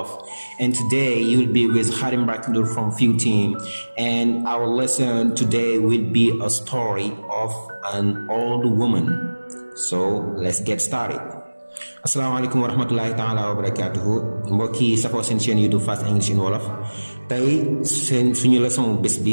And today you'll be with Harim Baknur from Few Team, and our lesson today will be a story of an old woman. So let's get started. Assalamualaikum warahmatullahi ta'ala wabarakatuh. Mbokki safoo seen chaîne YouTube Fast English in Wolof. Tey suñu leçon bés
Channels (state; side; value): inverted; both; correlation -1.00